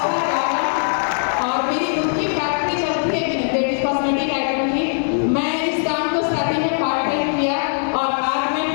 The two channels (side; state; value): right; silent; 66 dB below the other